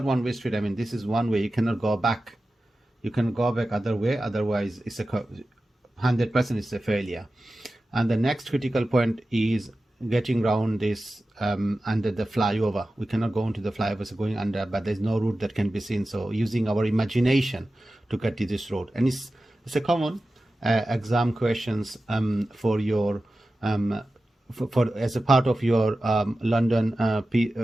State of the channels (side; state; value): both; normal; correlation 0.94